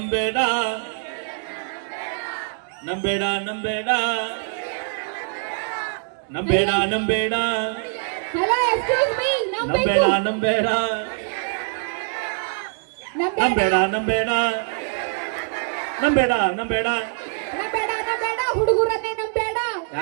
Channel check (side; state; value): left; silent; digital silence